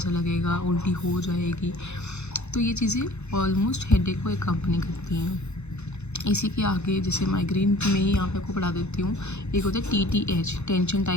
लगेगा, उल्टी हो जाएगी। तो ये चीज़ें ऑलमोस्ट हेडेक को एकम्पनी करती हैं। इसी के आगे जैसे माइग्रेन में ही यहाँ पे आपको पढ़ा देती हूँ, एक होता है TTH, टेंशन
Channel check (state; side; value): late; right; 0.81 ms